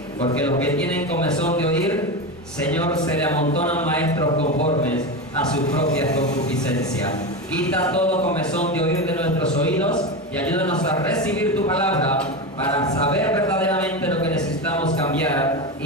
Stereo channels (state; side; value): normal; both; correlation 0.19